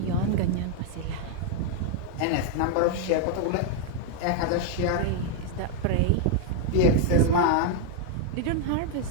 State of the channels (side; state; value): both; different; correlation 0.00